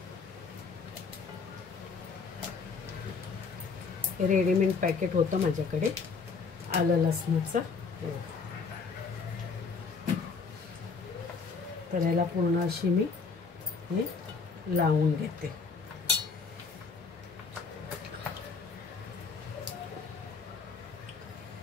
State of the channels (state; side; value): quieter; right; 4.9 dB